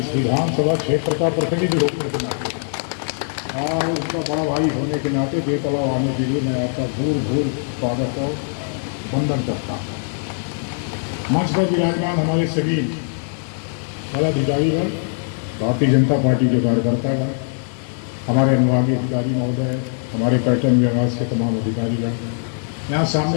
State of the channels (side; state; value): right; silent; digital silence